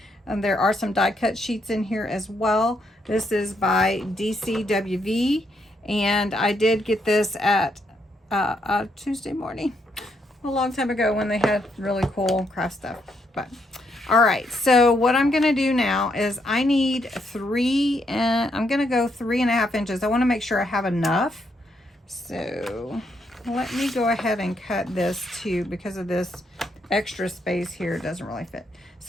There are some die cut sheets in here as well. This is by DCWV, and I did get this at Tuesday morning, a long time ago, when they had really cool craft stuff. But all right, so what I'm gonna do now is I need I'm gonna go 3.5 inches. I want to make sure I have enough. So let me go ahead and cut this too, because of this extra space here, it doesn't really fit.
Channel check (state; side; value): normal; both; correlation 0.76